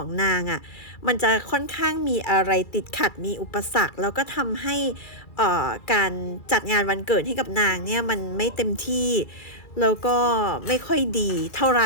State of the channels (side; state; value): right; late; 2.3 ms